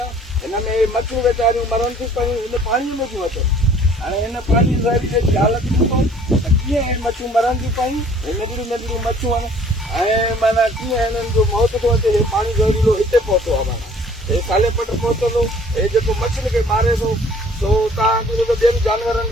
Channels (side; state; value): both; normal; correlation 0.55